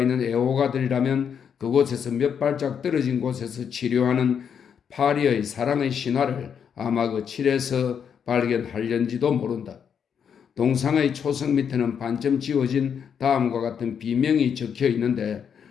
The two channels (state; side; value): quieter; right; 7.5 dB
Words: 있는 애호가들이라면 그곳에서 몇 발짝 떨어진 곳에서 치료하는 파리의 사랑의 신화를 아마 그 칠에서 발견하려는지도 모른다. 동상의 초석 밑에는 반쯤 지워진 다음과 같은 비명이 적혀 있는데